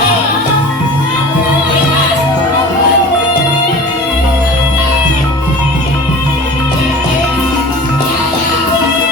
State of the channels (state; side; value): normal; both; correlation 0.39